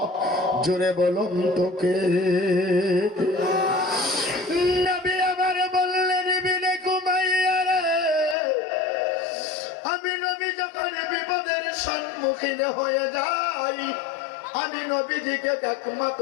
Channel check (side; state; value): right; drops out; at 8.3 s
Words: জোরে বলুন তোকে। নবী আমার বললেন, ইবনে কুমাইয়া রে, আমি নবী যখন বিপদের সম্মুখীন হয়ে যাই, আমি নবীজিকে